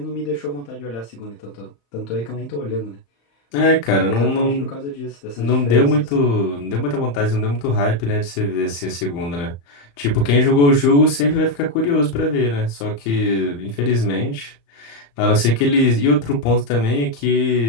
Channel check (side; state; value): right; late; 35 ms